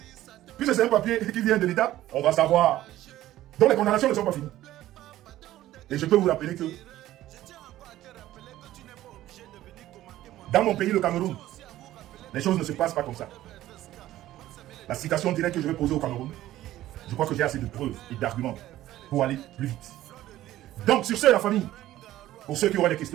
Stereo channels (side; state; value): left; quieter; 14.4 dB